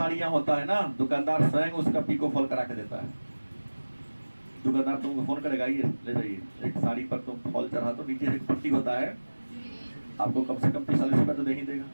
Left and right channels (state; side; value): inverted; both; correlation -1.00